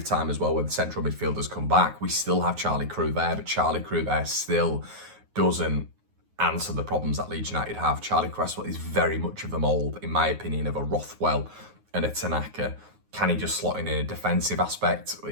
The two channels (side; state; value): left; late; 9.5 ms